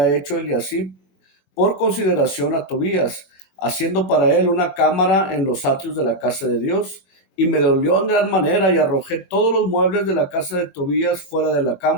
hecho Eliasib por consideración a Tobías, haciendo para él una cámara en los atrios de la casa de Dios. Y me dolió en gran manera, y arrojé todos los muebles de la casa de Tobías fuera de la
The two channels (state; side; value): late; right; 21 ms